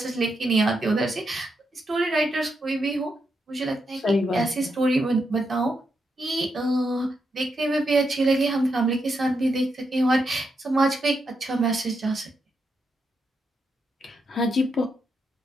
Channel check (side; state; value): both; normal; correlation 0.83